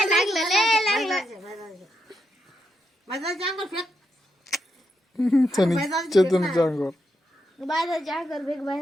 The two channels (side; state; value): both; normal; correlation 0.83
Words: माझा अंगावर फेक चेतनच्या अंगावर बाहेर जा कर बेग